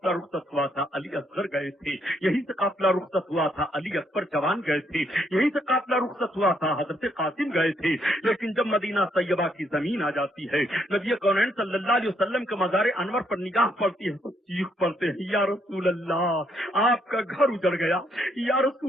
رخصت ہوا تھا، علی اصغر گئے تھے، یہیں سے قافلہ رخصت ہوا تھا، علی اکبر جوان گئے تھے، یہیں سے قافلہ رخصت وسط ہوا تھا، حضرت قاسم گئے تھے، لیکن جب مدینہ طیبہ کی زمین آ جاتی ہے، نبی کونین صلی اللہ علیہ وسلم کے مزار انور پر نگاہ پڑتی ہے تو چیخ پڑتے ہیں، یا رسول اللہ آپ کا گھر اجڑ گیا، یا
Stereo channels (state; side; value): normal; both; correlation 0.73